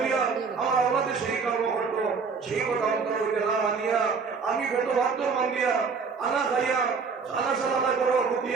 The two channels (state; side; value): quieter; left; 5.2 dB